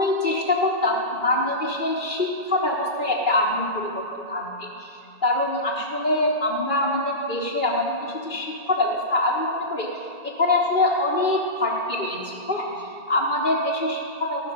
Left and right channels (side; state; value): right; late; 2.3 ms